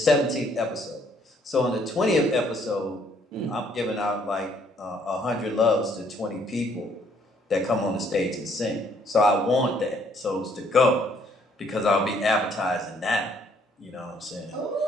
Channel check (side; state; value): both; normal; correlation 0.65